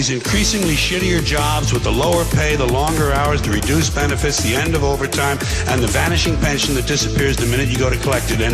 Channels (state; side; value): identical; both; correlation 1.00